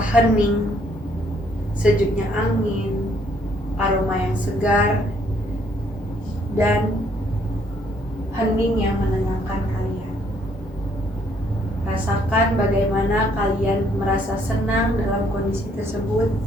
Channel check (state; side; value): normal; both; correlation 0.66